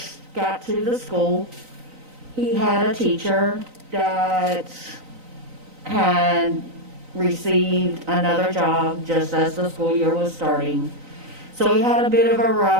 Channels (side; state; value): left; late; 3.9 ms